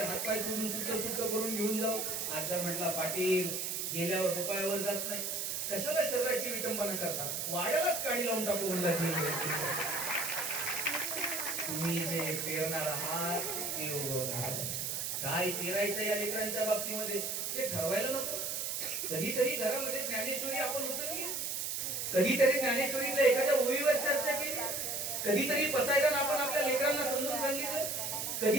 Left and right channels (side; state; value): right; noise; hiss, 2 dB below the sound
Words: हातपाय तोडून सुट्ट सुट्ट करून घेऊन जाऊ. आजा म्हटला पाटील गेल्यावर रुपयावर जात नाही, कशाला शरीराची विटंबना करता, वाड्यालाच काढी लावून टाकू म्हणला. तुम्ही जे पेरणार आहात ते उगवणार. काय पेरायचं या लेकरांच्या बाबतीमध्ये ते ठरवायला नको. कधीतरी घरामध्ये ज्ञानेश्वरी आपण उचलली, कधीतरी ज्ञानेश्वरीतल्या एखाद्या ओळीवर चर्चा केली, कधीतरी पसायदान आपण आपल्या लेकरांना समजून सांगितलं,